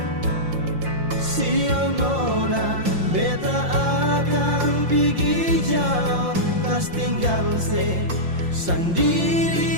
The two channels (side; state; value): left; late; 5.7 ms